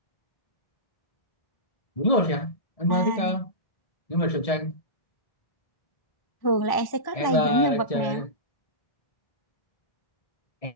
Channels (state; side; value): late; right; 1.7 ms